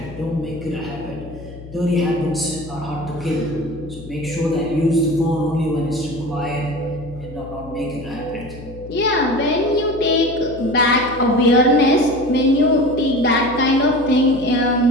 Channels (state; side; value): noise; left; hum, 15 dB below the sound